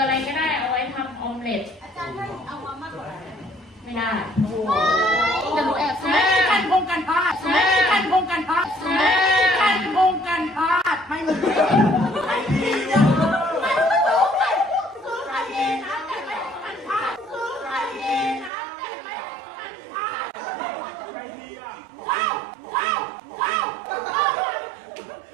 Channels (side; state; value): left; drops out; at 18.5 s